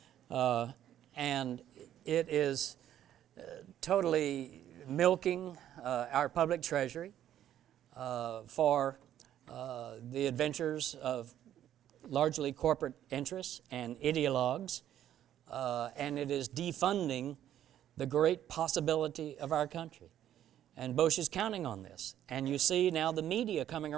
And it is totally milking our public treasury for the adventures of largely corporate interests and ideologues, and it is defunding the great possibility of our country. And Bush is counting on this. And you see now the media coming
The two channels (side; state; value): left; quieter; 11.3 dB